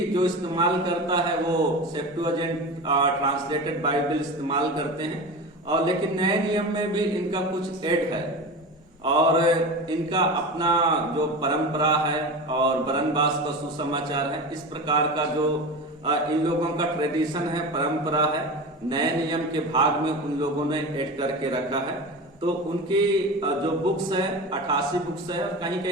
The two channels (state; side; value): normal; both; correlation 0.28